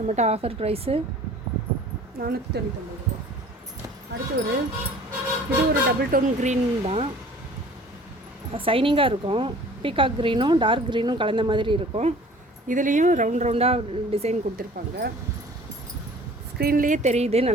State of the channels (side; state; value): both; normal; correlation 0.49